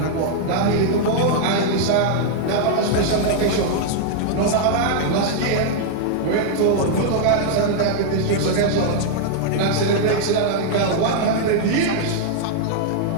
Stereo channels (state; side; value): different; both; correlation -0.01